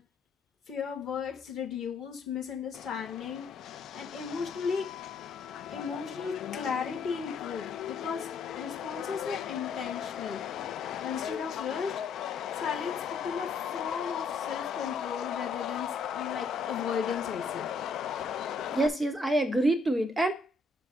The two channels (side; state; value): right; quieter; 3.6 dB